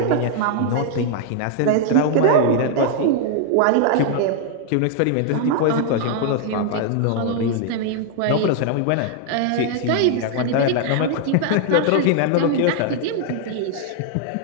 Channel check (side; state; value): both; different; correlation 0.00